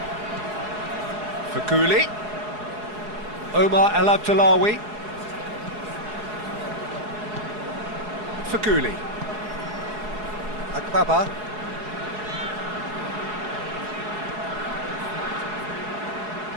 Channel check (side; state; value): left; late; 4.7 ms